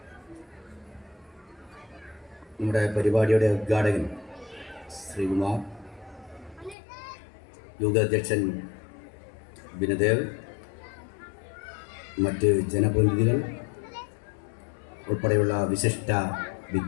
നമ്മുടെ പരിപാടിയുടെ ഉദ്ഘാടകൻ ശ്രീകുമാർ, യോഗാധ്യക്ഷൻ ബിനദേവ്, മറ്റ് ജനപ്രതിനിധികൾ ഉൾപ്പെടെയുള്ള വിശിഷ്ട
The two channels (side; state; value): right; drops out; at 6.8 s